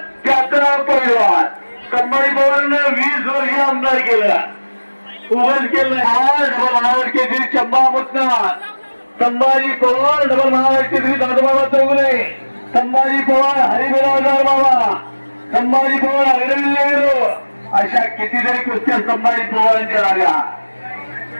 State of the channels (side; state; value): both; inverted; correlation -1.00